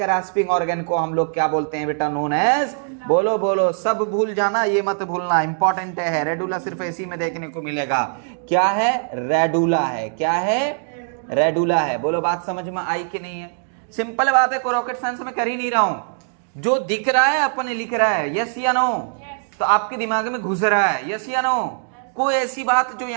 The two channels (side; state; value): left; silent; digital silence